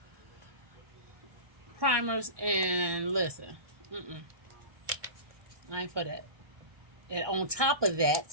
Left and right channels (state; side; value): late; left; 1.2 ms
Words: primers, and listen, I ain't for that. And on top of